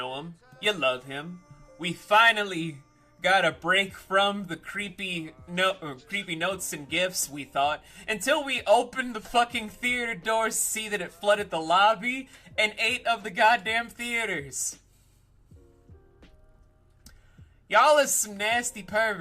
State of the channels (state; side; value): identical; both; correlation 1.00